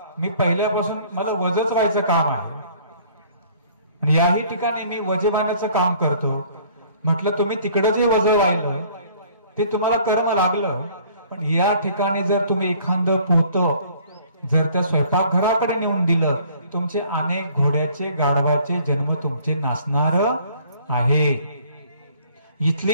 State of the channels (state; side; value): inverted; both; correlation -0.56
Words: मी पहिल्यापासून मला वजच व्हायचं काम आहे आणि याही ठिकाणी मी वजवानाचं काम करतो। म्हटलं तुम्ही तिकडे जे वजन राहिलं ते तुम्हाला कर्म लागलं, पण या ठिकाणी जर तुम्ही एखादं पोत जर त्या स्वयंपाकघराकडे नेऊन दिलं तुमचे अनेक घोड्याचे गाढवाचे जन्म तुमचे नासणार आहे।